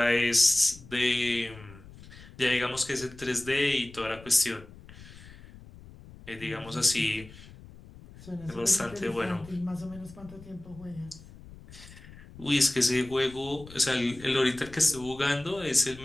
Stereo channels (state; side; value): noise; left; rumble, 19 dB below the sound